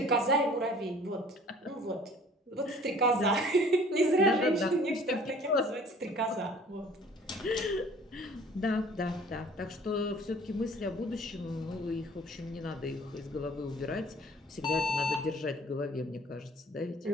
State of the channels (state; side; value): normal; both; correlation 0.51